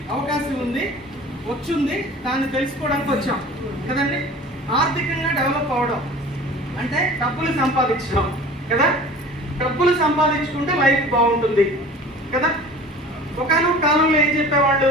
అవకాశం ఉంది, వచ్చింది. దాన్ని తెలుసుకోవడానికి వచ్చాం కదండి. ఆర్థికంగా డెవలప్ అవడం అంటే డబ్బులు సంపాదించడం కదా. డబ్బులు సంపాదించుకుంటే లైఫ్ బాగుంటుంది కదా. ఒకనొక కాలంలో ఏం చెప్పేవాళ్ళు,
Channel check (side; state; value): both; normal; correlation 0.42